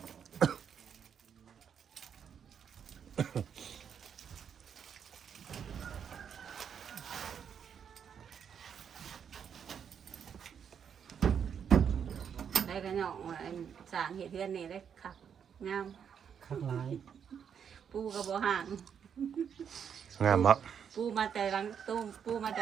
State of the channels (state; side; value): quieter; left; 7.7 dB